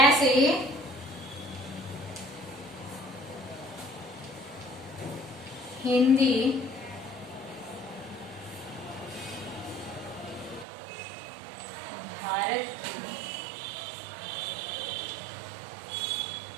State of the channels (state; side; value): drops out; left; at 10.7 s